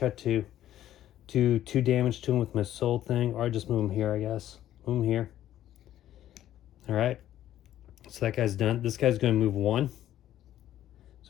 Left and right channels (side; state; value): right; quieter; 12.3 dB